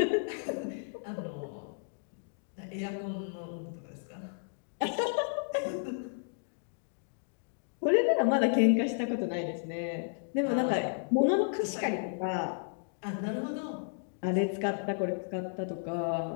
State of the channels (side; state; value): right; silent; digital silence